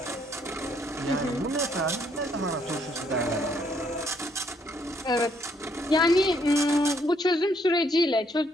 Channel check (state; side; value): normal; both; correlation 0.70